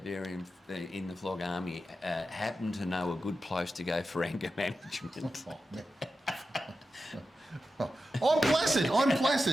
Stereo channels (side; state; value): both; normal; correlation 0.91